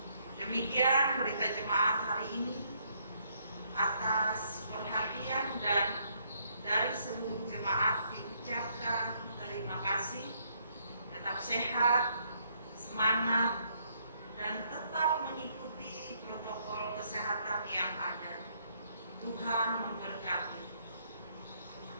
Demikian berita jemaat hari ini. Atas perhatian dan dari seluruh jemaat diucapkan terima kasih. Tetap sehat, semangat, dan tetap mengikuti protokol kesehatan yang ada. Tuhan memberkati.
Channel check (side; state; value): both; inverted; correlation -0.70